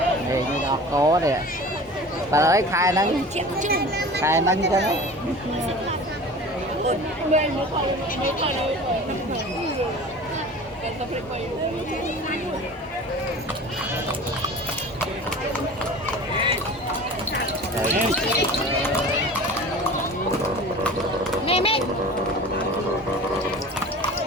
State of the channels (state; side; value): normal; both; correlation 0.39